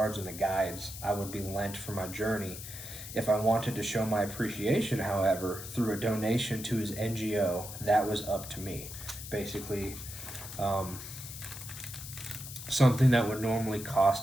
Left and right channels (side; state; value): left; noise; hiss, 11 dB below the sound